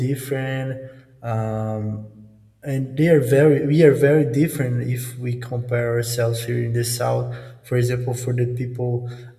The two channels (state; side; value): identical; both; correlation 1.00